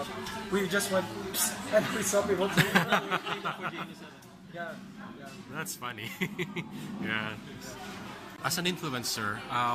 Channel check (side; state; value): both; identical; correlation 1.00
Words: We just went and we saw people. Yeah. That's funny. Yeah. As an influencer,